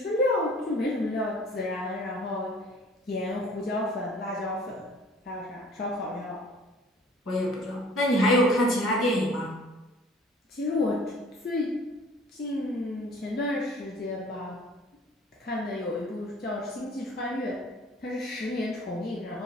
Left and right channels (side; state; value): both; normal; correlation 0.51